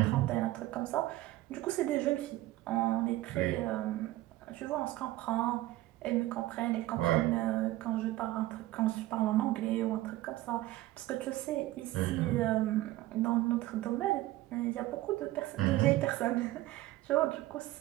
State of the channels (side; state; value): left; quieter; 16.8 dB